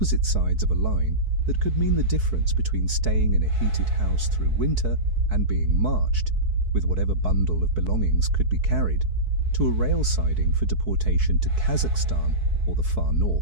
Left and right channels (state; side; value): late; left; 4.6 ms